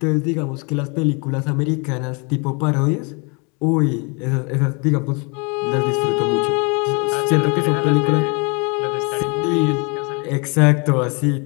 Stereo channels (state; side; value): quieter; right; 32.5 dB